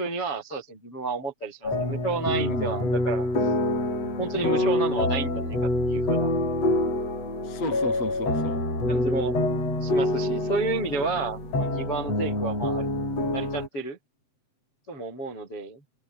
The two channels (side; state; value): right; late; 7.7 ms